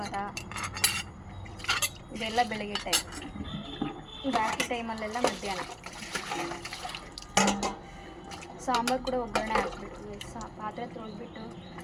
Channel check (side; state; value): both; identical; correlation 1.00